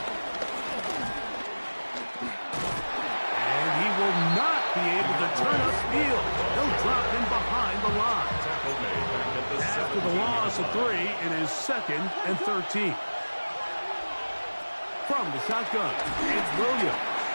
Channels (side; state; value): both; inverted; correlation -1.00